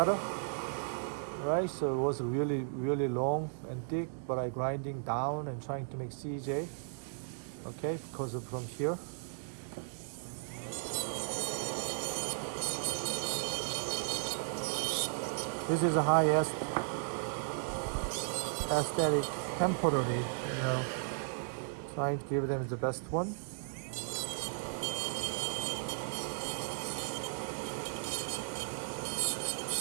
Right, so it was really long and thick, but I grinding down and trying to make CJ. Okay, because of from here. This is a highest aesthetic temporary, you know, trying to give them the best one.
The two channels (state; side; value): silent; left; digital silence